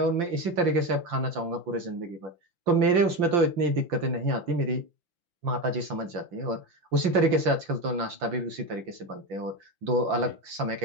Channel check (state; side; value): late; left; 5.8 ms